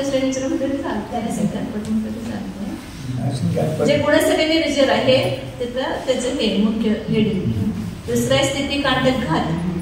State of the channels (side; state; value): both; identical; correlation 1.00